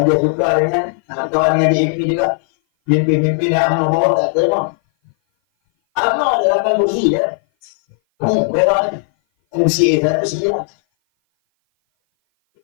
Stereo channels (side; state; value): right; silent; 57 dB below the other